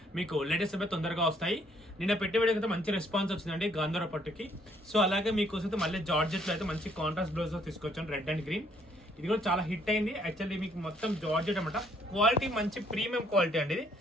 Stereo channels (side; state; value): both; normal; correlation 0.66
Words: మీకు లేటెస్ట్ అప్డేట్ తొందరగా వస్తాయి. నిన్న పెట్టే వీడియోకి అయితే మంచి రెస్పాన్స్ వచ్చిందండి గాంధార పట్టుకి. సో అలాగే మీకోసం అయితే మళ్ళీ జార్జెట్లో అయితే మంచి కాంట్రాస్ట్ బ్లౌజ్ తీసుకొచ్చాను, రెడ్ అండ్ గ్రీన్. ఇది కూడా చాలా హిట్ అయింది. యాక్చువల్లీ మీకు మొత్తం జార్జెట్ అనమాట, క్వాలిటీ మంచి ప్రీమియం క్వాలిటీ అండి. ఇది